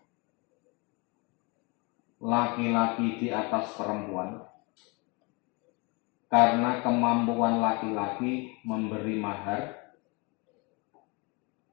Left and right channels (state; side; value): quieter; right; 29.0 dB